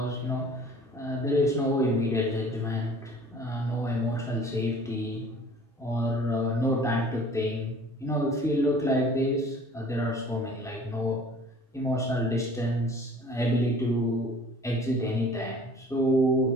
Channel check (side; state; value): both; normal; correlation 0.49